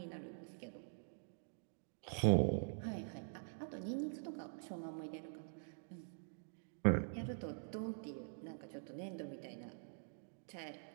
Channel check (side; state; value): left; silent; digital silence